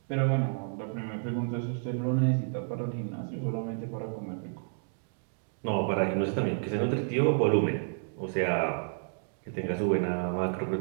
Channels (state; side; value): silent; left; digital silence